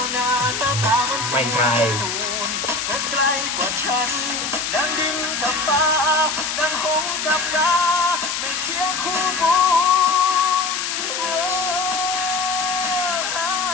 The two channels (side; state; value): left; noise; hiss, 2 dB below the sound